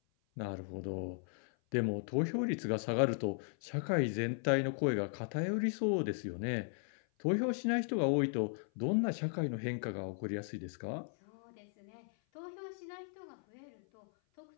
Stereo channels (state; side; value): silent; right; 53 dB below the other